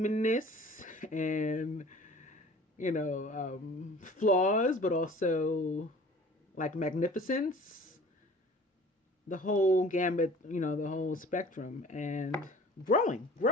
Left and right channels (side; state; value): both; normal; correlation 0.47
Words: and, flaws, but also magnificence, the whole gambit, the whole spectrum, and